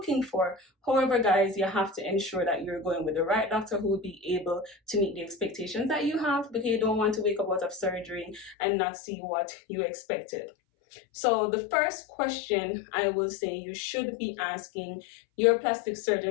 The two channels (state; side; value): drops out; right; at 8.6 s